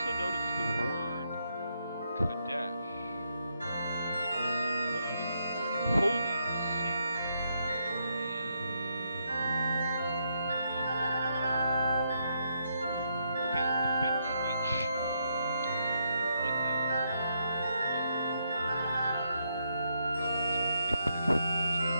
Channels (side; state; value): both; inverted; correlation -0.78